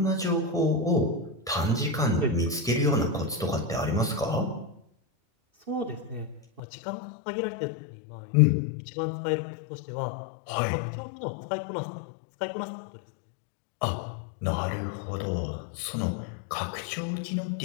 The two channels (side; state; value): right; drops out; at 6.6 s